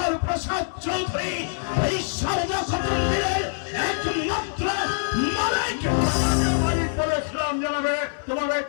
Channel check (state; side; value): silent; right; 62 dB below the other